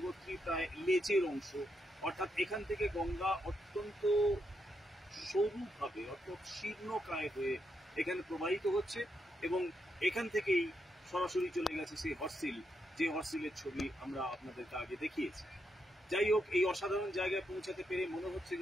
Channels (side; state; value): both; normal; correlation 0.81